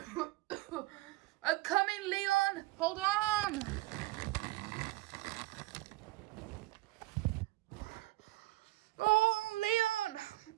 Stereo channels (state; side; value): quieter; left; 19.1 dB